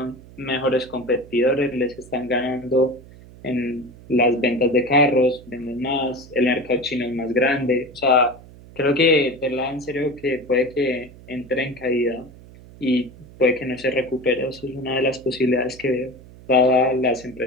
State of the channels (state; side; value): noise; right; hum, 20 dB below the sound